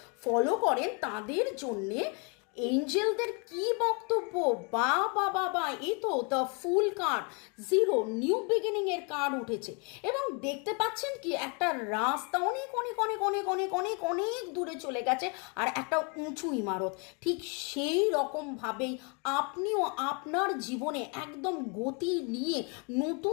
ফলো করেন, তাদের জন্যে এঞ্জেলদের কি বক্তব্য। বা বা বা বা, এই তো the fool card, zero new beginning এর কার্ড উঠেছে এবং দেখতে পাচ্ছেন কি একটা রাস্তা অনেক অনেক অনেক অনেক অনেক অনেক অনেক দূরে চলে গেছে আর একটা উঁচু ইমারত। ঠিক সেই রকমভাবেই আপনিও আপনার জীবনে একদম গতি নিয়ে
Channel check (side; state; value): right; quieter; 34.7 dB